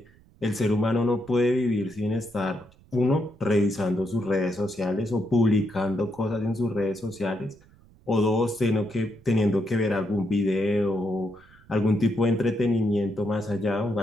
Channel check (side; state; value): right; noise; rumble, 27 dB below the sound